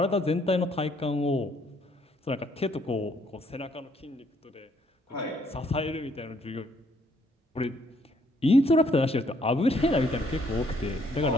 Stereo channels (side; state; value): both; normal; correlation 0.68